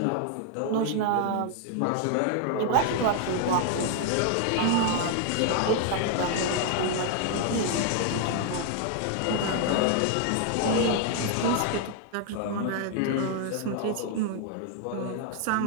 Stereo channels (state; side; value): different; both; correlation 0.00